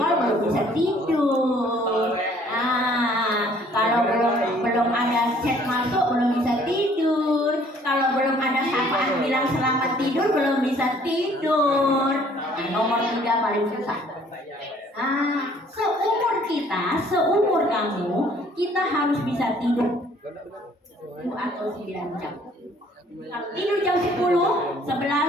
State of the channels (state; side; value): normal; both; correlation 0.59